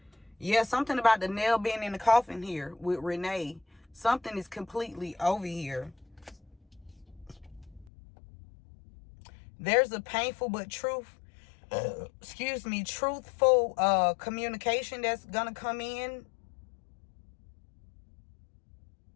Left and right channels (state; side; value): drops out; right; at 7.9 s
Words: Yeah, something about the nail being in the coffin here with Renee. Something is completely over here. There's a painful but truthful communication that's gonna come in.